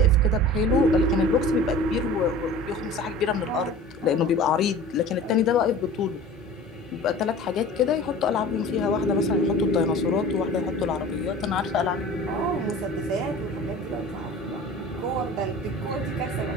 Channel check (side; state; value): both; normal; correlation 0.40